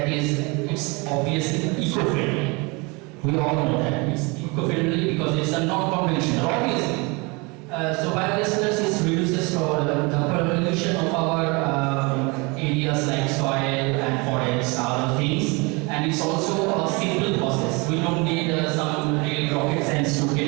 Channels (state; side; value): quieter; left; 28.1 dB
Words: is, it's obviously eco-friendly. We all know that it's eco-friendly because it's a non-conventional, obviously. So biogas reduces the pollution of our areas like soil and forests, other things, and it's also a simple process. We don't need some real rocket science to get